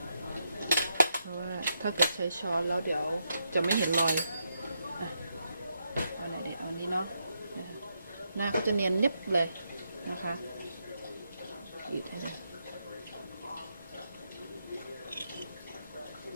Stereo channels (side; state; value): both; inverted; correlation -0.81